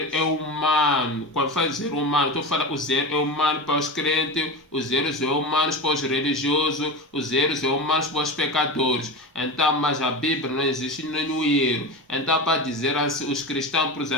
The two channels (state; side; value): normal; both; correlation 0.24